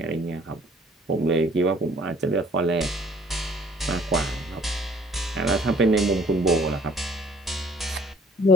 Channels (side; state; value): both; normal; correlation 0.55